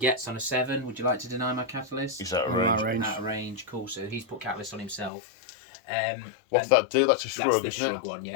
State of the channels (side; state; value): right; drops out; at 5.1 s